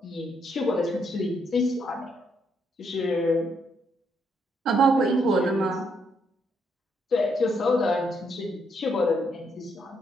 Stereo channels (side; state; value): both; normal; correlation 0.75